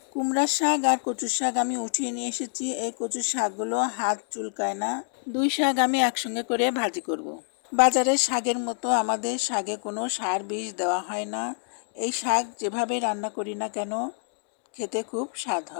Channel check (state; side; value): silent; right; 60 dB below the other